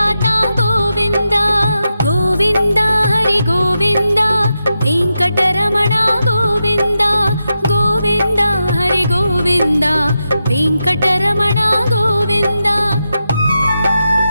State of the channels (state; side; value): inverted; both; correlation -0.88